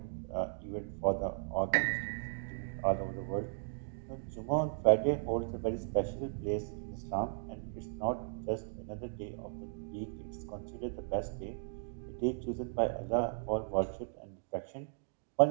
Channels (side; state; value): left; silent; digital silence